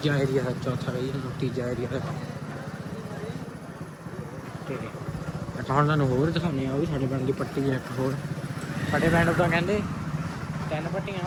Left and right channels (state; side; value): identical; both; correlation 1.00